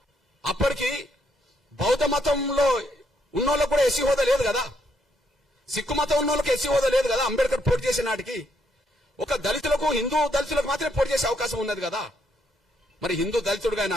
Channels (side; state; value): both; normal; correlation 0.74